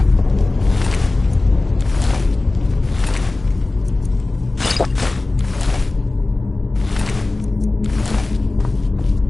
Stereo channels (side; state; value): right; quieter; 3.1 dB